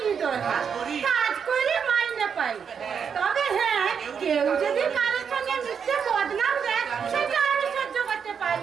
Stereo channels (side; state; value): left; quieter; 6.9 dB